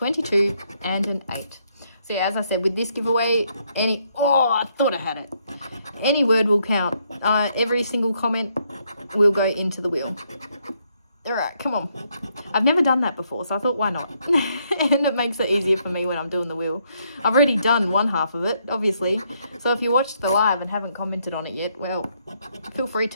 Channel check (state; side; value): inverted; both; correlation -0.73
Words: and an 8. So yeah, as I said, with this giveaway, I thought I had it. Any word will count. Every single comment will go into the wheel. Alright, come on. I've never done that before, so I thought, why not? And it makes it easier for me when I'm doing the wheel. I've already done one half of it, obviously. So if you watched the live and haven't commented on it yet, well, feel free